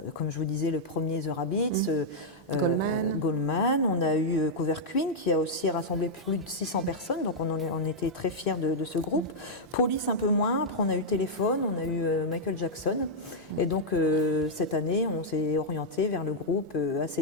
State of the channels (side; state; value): both; normal; correlation -0.05